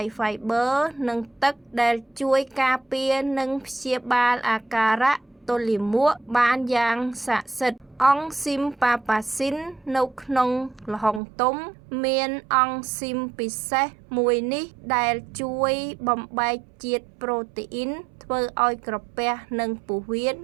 Fiber និងទឹកដែលជួយការពារនិងព្យាបាលអាការៈទល់លាមកបានយ៉ាងស័ក្តិសិទ្ធិអង់ស៊ីមប៉ាប៉ាស៊ីននៅក្នុងល្ហុងទុំមានអង់ស៊ីមពិសេសមួយនេះដែលជួយបំបែកជាតិប្រូតេអ៊ីនធ្វើឲ្យក្រពះនិងពោះវៀន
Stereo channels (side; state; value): left; drops out; at 11.2 s